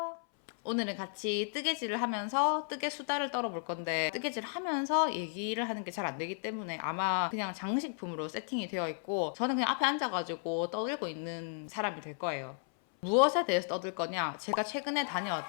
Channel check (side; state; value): right; silent; 55 dB below the other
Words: 오늘은 같이 뜨개질을 하면서 뜨개 수다를 떨어볼 건데, 뜨개질 하면서 얘기를 하는 게 잘 안 되기 때문에 아마 그냥 장식품으로 세팅이 되어 있고, 저는 그냥 앞에 앉아가지고 떠들고 있는 사람이 될 거예요. 무엇에 대해서 떠들 거냐? 제가 최근에